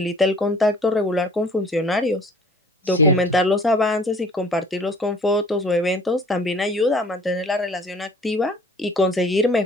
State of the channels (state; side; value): normal; both; correlation 0.51